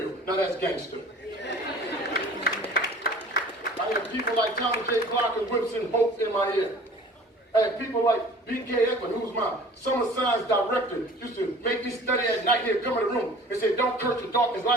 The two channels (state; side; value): normal; both; correlation 0.47